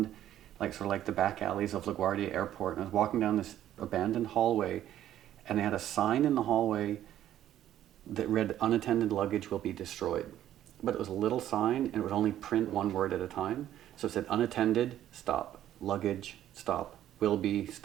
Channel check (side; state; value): left; quieter; 12.0 dB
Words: like sort of like the back alleys of LaGuardia Airport, and I was walking down this abandoned hallway, and they had a sign in the hallway that read, "Unattended luggage will be destroyed." But it was a little sign, and it would only print one word at a time. So it said, "Unattended, stop. Luggage, stop. Will be,